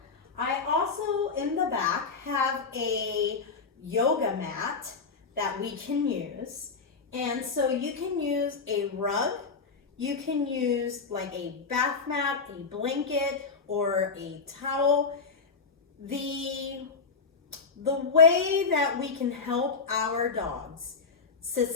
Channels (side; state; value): right; quieter; 4.8 dB